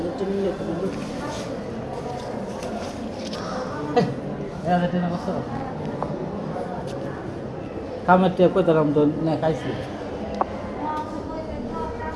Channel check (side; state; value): both; identical; correlation 1.00